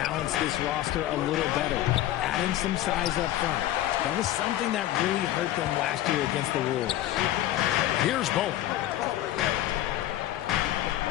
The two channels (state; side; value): quieter; right; 13.9 dB